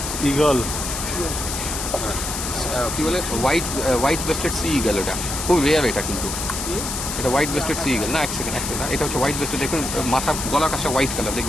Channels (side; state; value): left; noise; hiss, 4 dB below the sound